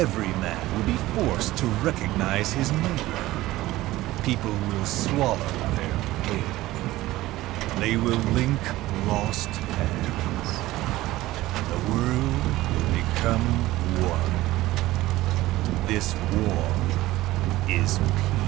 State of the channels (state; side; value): quieter; left; 17.1 dB